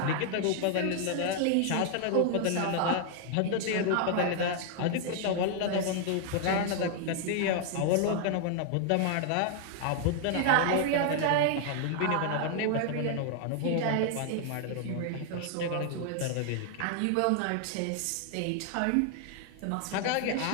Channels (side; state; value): both; different; correlation 0.00